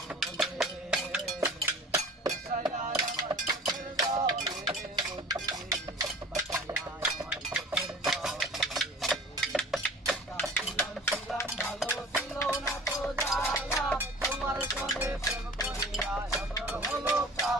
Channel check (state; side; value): normal; both; correlation 0.43